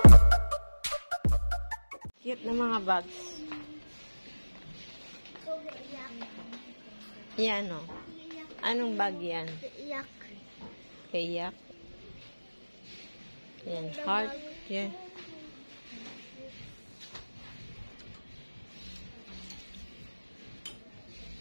Cute na mga bags. Yan o. Anong bag yan? Iyak. Kayak. Yan. Heart. Yan.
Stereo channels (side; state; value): both; inverted; correlation -1.00